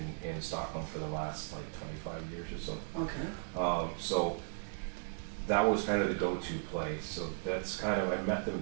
in Stockholm for the last like 25 years or so. Okay. So that was kind of the go-to place. So that's kind of, I met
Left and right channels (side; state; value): left; silent; digital silence